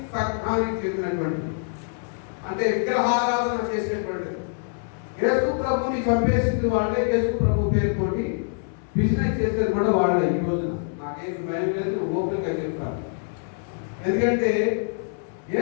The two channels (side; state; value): right; silent; 62 dB below the other